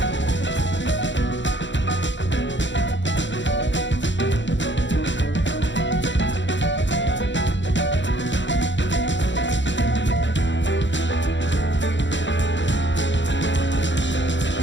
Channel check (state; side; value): late; right; 0.53 ms